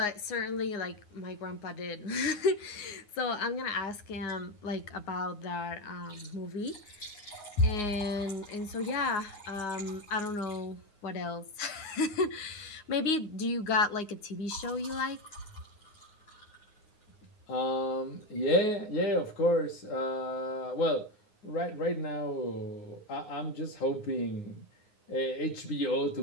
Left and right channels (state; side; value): late; right; 9.6 ms